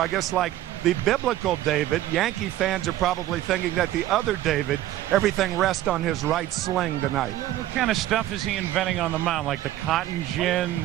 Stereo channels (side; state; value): left; quieter; 14.0 dB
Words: guess like the biblical David, Yankee fans are probably thinking that the other David, everything rests on his right sling tonight. What kind of stuff is he inventing on the mound? Like the cotton gin,